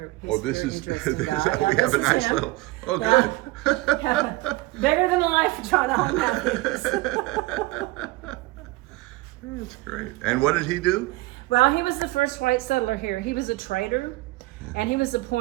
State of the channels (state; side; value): quieter; left; 20.4 dB